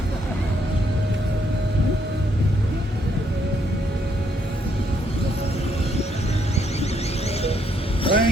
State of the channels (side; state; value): both; normal; correlation 0.73